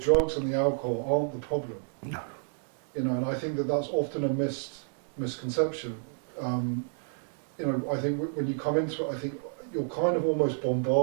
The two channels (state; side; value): silent; left; digital silence